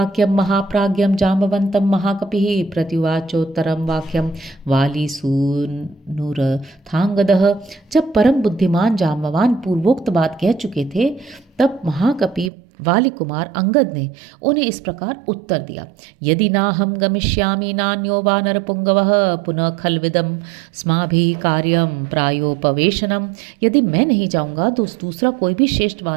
महाप्राज्ञम जाम्बवंतम महाकपिः प्रत्युवाचोत्तरम वाक्यम वालीसूनुरथांगदः। जब परम बुद्धिमान जाम्बवान पूर्वोक्त बात कह चुके थे, तब महाकपि वाली कुमार अंगद ने उन्हें इस प्रकार उत्तर दिया। यदि नाहं गमिष्यामि नान्यो वानरपुंगवः पुनः खल्विदं स्माभिः कार्यं प्रायोपवेशनम। यदि मैं नहीं जाऊंगा तो दूसरा कोई भी श्रेष्ठ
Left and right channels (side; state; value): left; drops out; at 12.5 s